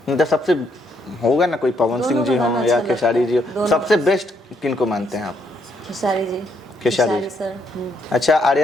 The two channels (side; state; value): both; normal; correlation 0.73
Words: मतलब सबसे होगा ना कोई, पवन सिंह जी दोनों हो का या अच्छा खेसारी जी लगता है, हो, दोनों। सबसे बेस्ट किनको मानते हैं आप? खेसारी जी। खेसारी सर। अच्छा